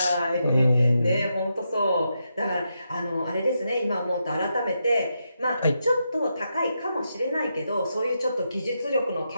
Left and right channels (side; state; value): both; inverted; correlation -0.84